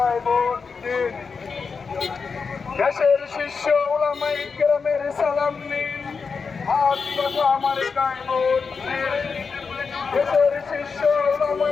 ভোট দিন। দেশের শীর্ষ ওলামায়ে কেরামের সালাম নিন, হাত পাখা মার্কায় ভোট দিন। দেশের শীর্ষ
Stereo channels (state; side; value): quieter; right; 5.2 dB